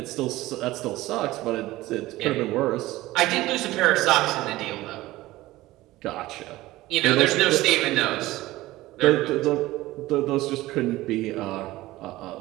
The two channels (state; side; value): quieter; left; 17.6 dB